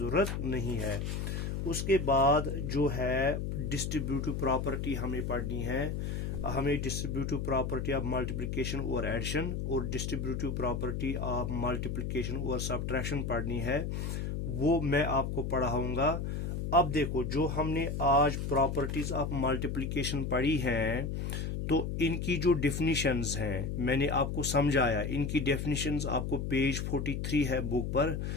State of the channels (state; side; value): noise; left; hum, 2 dB below the sound